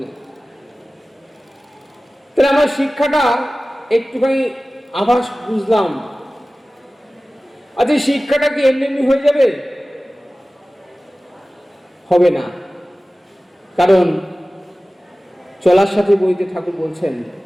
তাহলে আমার শিক্ষাটা একটুখানি আভাস বুঝলাম। আচ্ছা, শিক্ষাটা কি এমনি এমনি হয়ে যাবে? হবে না, কারণ চলার সাথে বইতে ঠাকুর বলছেন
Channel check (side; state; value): both; normal; correlation 0.97